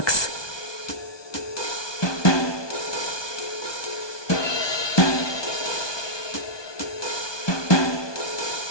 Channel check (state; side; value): late; right; 1.2 ms